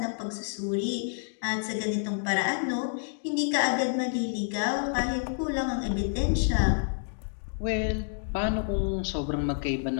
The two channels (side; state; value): right; silent; digital silence